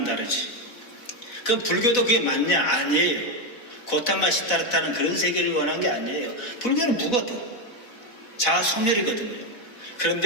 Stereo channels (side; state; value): right; late; 4.0 ms